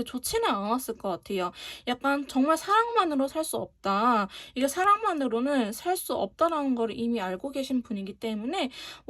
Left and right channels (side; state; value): both; identical; correlation 1.00